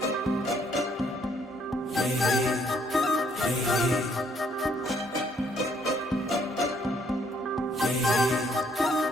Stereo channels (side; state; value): both; normal; correlation 0.67